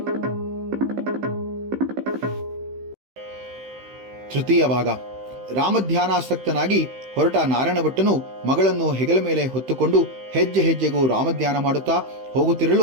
ತೃತೀಯ ಭಾಗ. ರಾಮಧ್ಯಾನಾಸಕ್ತನಾಗಿ ಹೊರಟ ನಾರಾಯಣ ಭಟ್ಟನು ಮಗಳನ್ನು ಹೆಗಲ ಮೇಲೆ ಹೊತ್ತುಕೊಂಡು ಹೆಜ್ಜೆ ಹೆಜ್ಜೆಗೂ ರಾಮಧ್ಯಾನ ಮಾಡುತ್ತಾ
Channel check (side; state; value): left; late; 15 ms